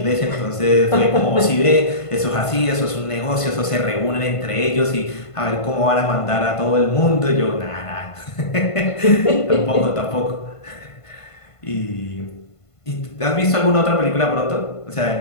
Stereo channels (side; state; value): right; late; 1.5 ms